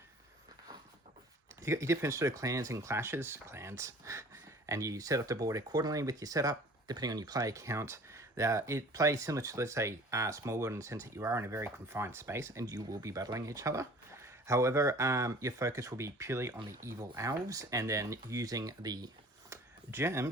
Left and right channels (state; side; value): normal; both; correlation 0.47